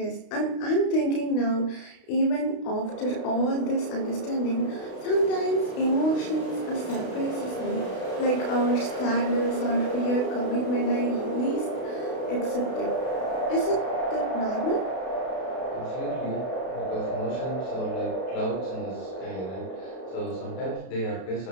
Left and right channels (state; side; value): late; right; 32 ms